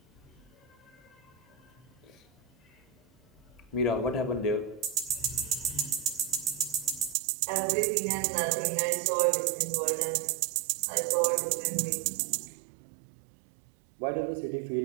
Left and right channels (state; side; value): drops out; left; at 7.2 s